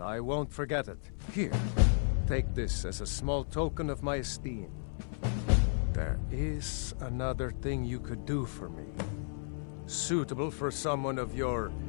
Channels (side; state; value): right; silent; 55 dB below the other